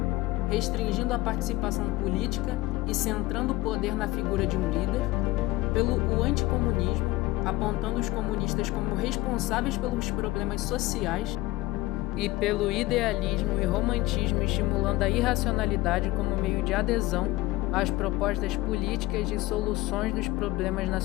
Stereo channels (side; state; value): right; quieter; 18.6 dB